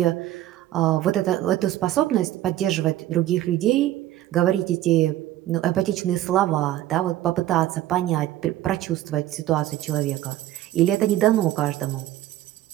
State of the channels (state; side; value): quieter; left; 14.0 dB